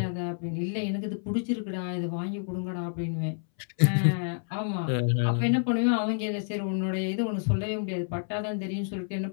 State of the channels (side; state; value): right; silent; 59 dB below the other